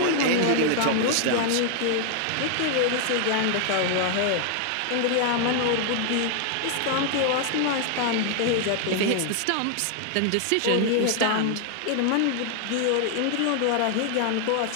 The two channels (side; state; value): both; different; correlation 0.00